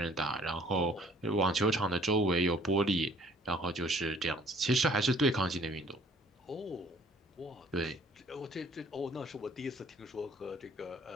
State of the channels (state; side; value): normal; both; correlation 0.56